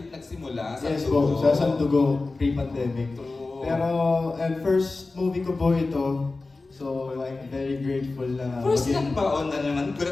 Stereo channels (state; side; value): quieter; right; 3.5 dB